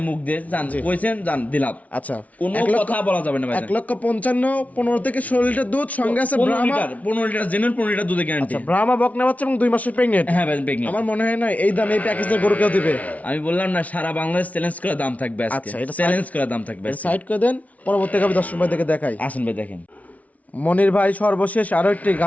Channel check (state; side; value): late; right; 0.069 ms